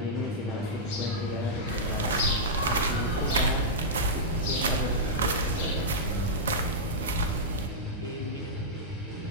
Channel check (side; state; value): both; normal; correlation -0.10